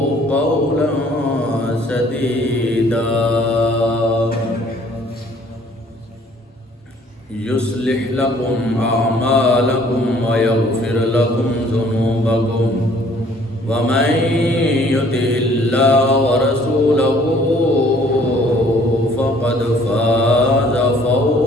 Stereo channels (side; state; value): both; normal; correlation 0.58